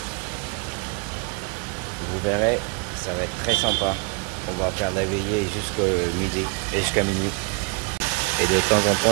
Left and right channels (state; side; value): quieter; left; 32.4 dB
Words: Vous verrez, ça va être très sympa. On va faire la veillée jusqu'à midi et jusqu'à minuit. Et de temps en